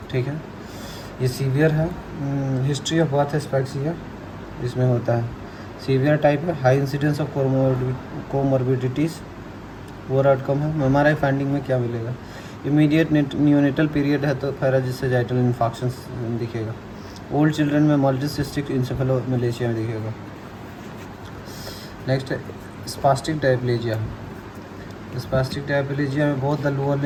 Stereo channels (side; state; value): both; identical; correlation 1.00